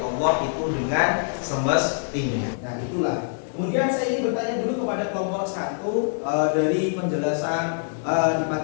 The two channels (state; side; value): silent; right; digital silence